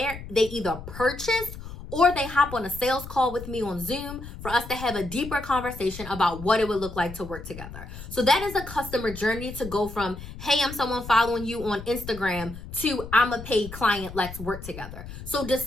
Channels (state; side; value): noise; left; rumble, 12 dB below the sound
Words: they either purchase or they hop on a sales call with me on Zoom for us to have a deeper conversation about what it would look like to work together. So that is a customer journey to go from, hey, I'm someone following you on Instagram to I'm a paid client, let's work together. So